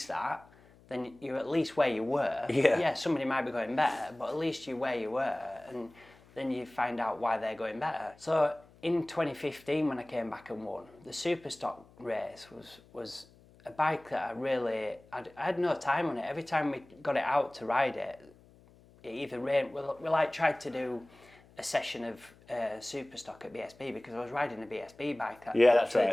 that, then you're at least where you were. Yeah, somebody might be going better, but at least you're where you were, and then you find out why they're going better. So in 2015, when I came back and won, the Superstock race was a bike that I had no time on it. Every time we got it out to ride it, it either rained. We like tried to do a session of Superstock at BSB, because I was riding a BSB bike at TT. Yeah.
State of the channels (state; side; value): noise; left; hum, 26 dB below the sound